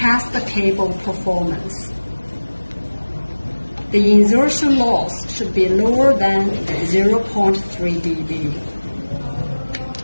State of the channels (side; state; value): both; inverted; correlation -1.00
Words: the cable performance. The insertion loss should be lower than 0.3 dB.